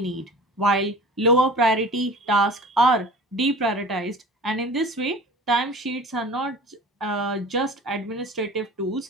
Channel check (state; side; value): normal; both; correlation 0.40